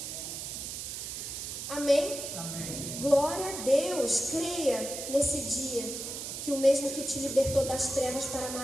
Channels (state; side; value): noise; right; hiss, 6 dB below the sound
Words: Amém? Amém. Glória a Deus. Creia nesse dia que o mesmo que te libertou das trevas para a